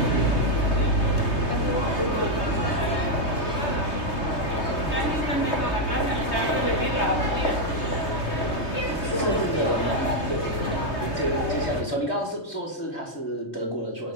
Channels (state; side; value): late; right; 3.2 ms